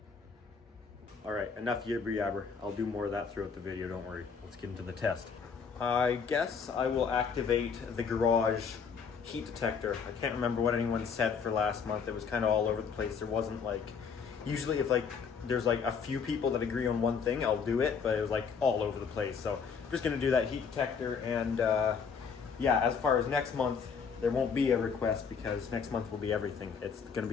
All right, enough yibber yabber. I'll do more of that throughout the video, don't worry. Let's get into the test. I guess I will activate the garage heat detector. I can't remember what anyone said for last month. It was kind of all over the place. There wasn't like, usually if like there's like a few people that agree on one thing, I'll do it, but it was like all over the place. So I'm just gonna do that heat detector, and yeah, as far as next month, there won't be a request because next month will be everything. It's gonna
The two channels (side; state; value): right; quieter; 6.1 dB